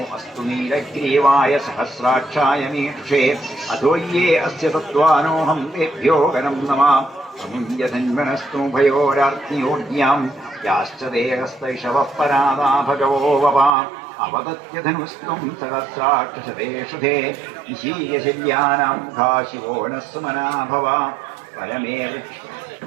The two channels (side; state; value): left; drops out; at 13.7 s